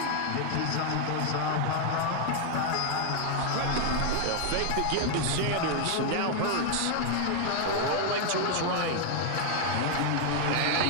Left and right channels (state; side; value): different; both; correlation 0.00